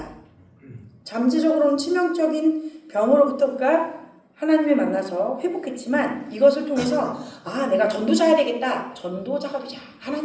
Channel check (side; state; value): both; identical; correlation 1.00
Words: 잠재적으로는 치명적인 병으로부터가 하나님을 만나서 회복했지만 이것을 통해서 내가 전도자야 되겠다. 전도자가 되자.